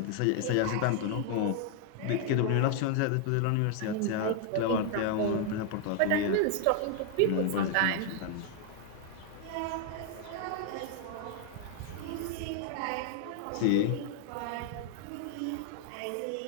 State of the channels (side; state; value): both; different; correlation 0.00